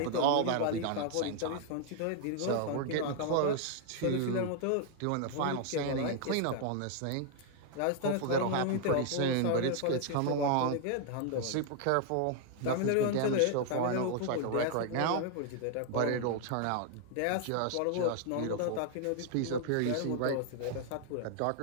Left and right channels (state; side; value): different; both; correlation 0.00